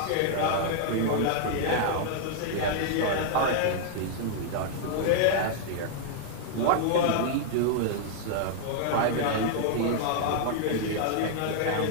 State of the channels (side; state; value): both; different; correlation -0.01